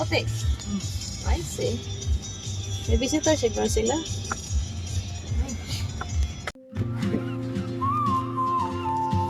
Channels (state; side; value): identical; both; correlation 1.00